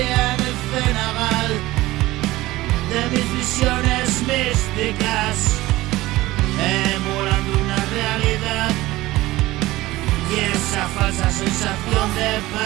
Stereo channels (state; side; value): quieter; left; 18.1 dB